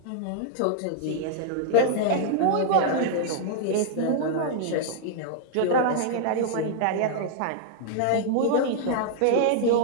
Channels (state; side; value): different; both; correlation -0.01